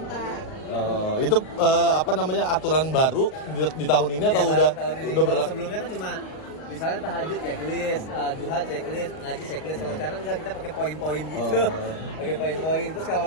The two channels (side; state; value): right; late; 38 ms